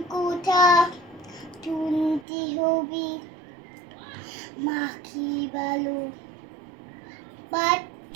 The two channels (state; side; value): drops out; left; at 2.2 s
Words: কথা শুনতে হবে, মা কি ভালো